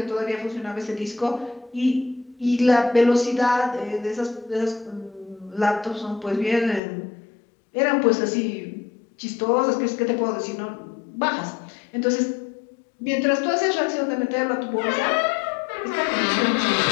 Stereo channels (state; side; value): drops out; right; at 6.8 s